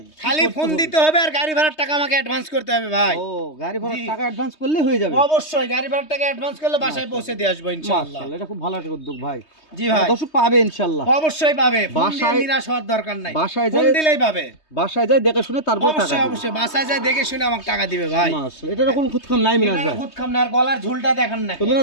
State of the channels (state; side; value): late; right; 3.2 ms